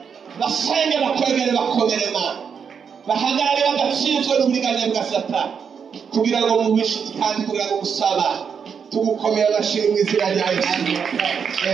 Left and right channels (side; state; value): left; quieter; 6.7 dB